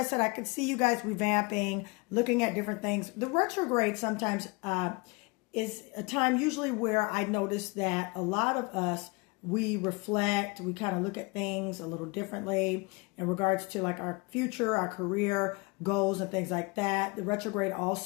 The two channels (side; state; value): right; quieter; 27.3 dB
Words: said I could see you guys revamping, looking at different things. The retrograde sometimes is a time usually where I notice that a lot of us, we reflect, we kind of look at things a little differently in regards to like our future, our career goals and things like that. The retrograde